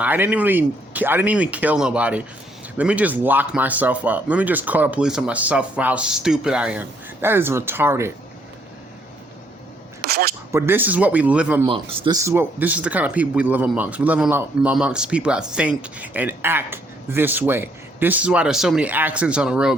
didn't even kill nobody. Let me just lock myself up. Let me just call the police on myself for how stupid I am. That is retarded. But this is what we live amongst. This is the kind of people we live amongst. We live amongst people that think and act this way. This is why there's so many accidents on the road,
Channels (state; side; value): normal; both; correlation 0.69